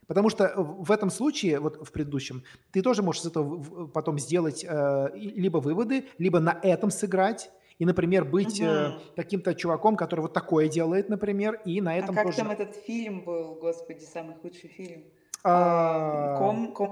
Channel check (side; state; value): both; identical; correlation 1.00